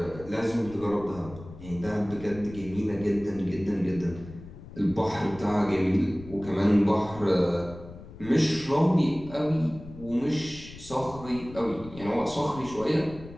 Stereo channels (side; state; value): left; noise; rumble, 16 dB below the sound